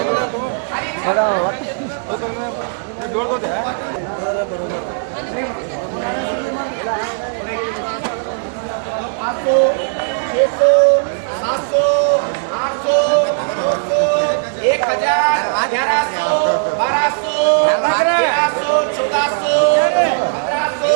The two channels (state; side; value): silent; left; digital silence